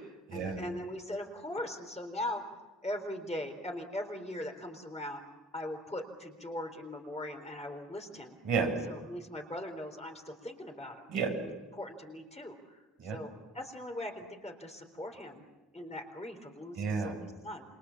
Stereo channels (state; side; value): normal; both; correlation 0.52